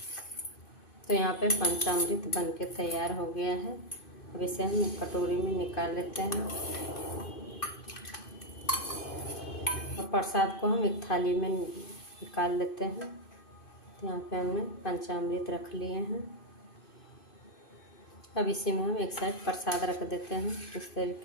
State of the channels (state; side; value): late; right; 2.5 ms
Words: तो यहाँ पे पंचामृत बनके तैयार हो गया है। अब इसे हम एक कटोरी में निकाल लेते हैं और प्रसाद को हम एक थाली में निकाल लेते हैं। तो यहाँ पे हमने पंचामृत रख लिए हैं। अब इसी में हम एक साइड प्रसाद रख देते हैं इस